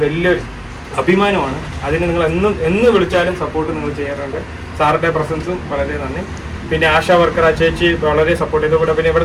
വലിയൊരു അഭിമാനമാണ്. അതിന് നിങ്ങൾ എന്ന് വിളിച്ചാലും സപ്പോർട്ട് നിങ്ങൾ ചെയ്യാറുണ്ട്. സാറിൻ്റെ പ്രസൻസും വളരെ നന്ദി. പിന്നെ ആശാ വർക്കർ ആ ചേച്ചി വളരെ സപ്പോർട്ട് ചെയ്തു. കൂടെ പിന്നെ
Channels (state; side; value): identical; both; correlation 1.00